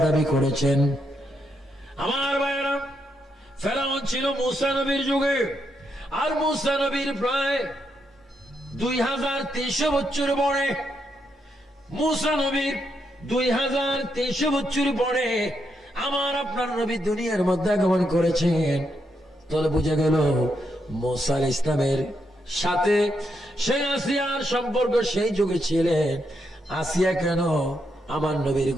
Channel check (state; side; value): normal; both; correlation 0.80